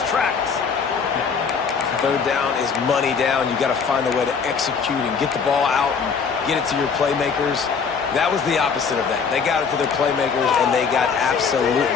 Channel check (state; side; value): quieter; right; 5.9 dB